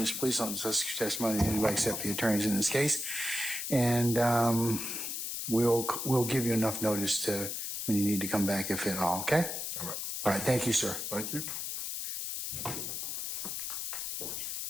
Please don't discuss your testimony to anybody except the attorneys in this case. And we'll give you enough notice to when you need to come back, if at all. Okay? All right. All right. Thank you, sir. Thank you.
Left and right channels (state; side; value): noise; left; hiss, 4 dB below the sound